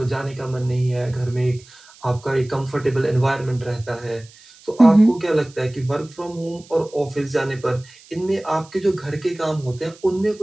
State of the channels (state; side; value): noise; right; hiss, 24 dB below the sound